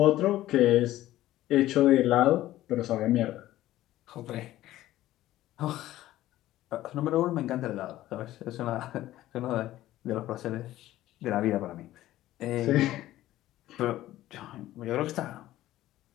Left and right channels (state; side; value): quieter; right; 14.8 dB